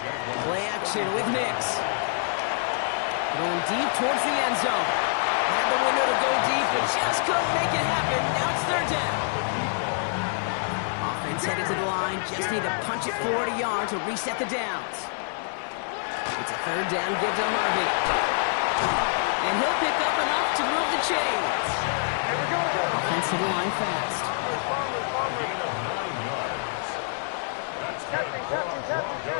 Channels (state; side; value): silent; right; 61 dB below the other